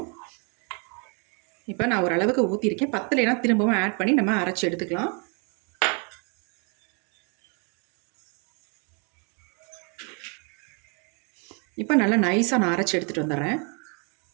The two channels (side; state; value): left; quieter; 35.6 dB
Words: இப்போ நான் ஓரளவுக்கு ஊற்றிருக்கேன். பத்தலைனா திரும்பவும் ஆட் பண்ணி நம்ம அரைச்சி எடுத்துக்கலாம். இப்போ நல்லா நைஸாக நான் அரைச்சி எடுத்துகிட்டு வந்துடுறேன்.